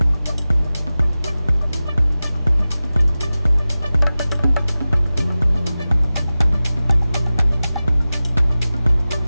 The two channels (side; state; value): both; inverted; correlation -0.96